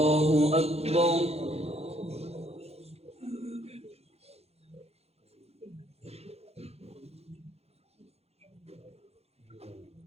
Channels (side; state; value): left; late; 0.30 ms